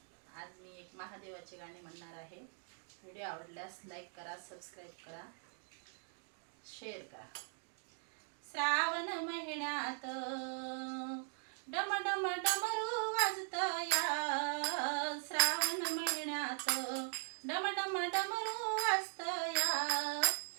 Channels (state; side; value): silent; left; 51 dB below the other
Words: आज मी एक महादेवाचे गाणे म्हणणार आहे। व्हिडिओ आवडल्यास लाईक करा, सबस्क्राइब करा, शेअर करा। श्रावण महिन्यात डम डम डमरू वाजतया, श्रावण महिन्यात डम डम डमरू वाजतया,